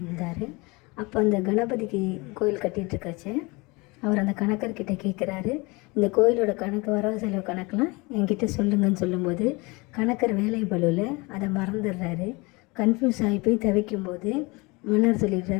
அப்போ அந்த கணபதிக்கு கோயில் கட்டிகிட்ருக்காச்சு. அவர் அந்த கணக்கர்கிட்ட கேட்குறாரு, இந்த கோயிலோட கணக்கு, வரவு செலவு கணக்கெலாம் என்கிட்ட சொல்லுங்கன்னு சொல்லும்போது கணக்கர் வேலை பளுவில் அதை மறந்துடுறாரு. கன்ஃபியூஸ் ஆகி போய் தவிக்கும்போது மன்னர்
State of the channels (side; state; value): right; quieter; 25.7 dB